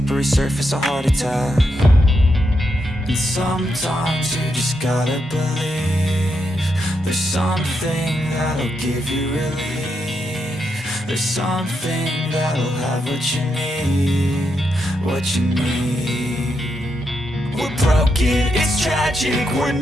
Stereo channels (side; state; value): both; normal; correlation 0.82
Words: surface, a heart attack. And sometimes you just gotta believe there's something that'll give you relief. There's something that'll have what you need, what you need. We're broken, it's tragic, we're